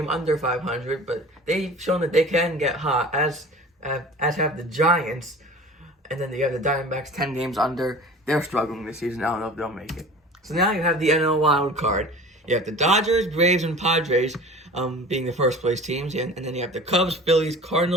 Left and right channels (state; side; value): normal; both; correlation 0.41